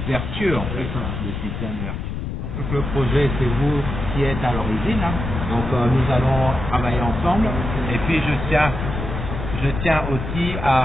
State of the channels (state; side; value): noise; left; rumble, 5 dB below the sound